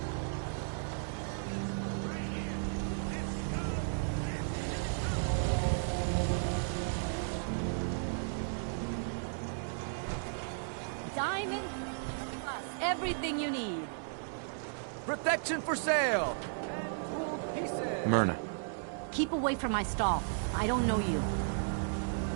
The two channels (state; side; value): silent; left; digital silence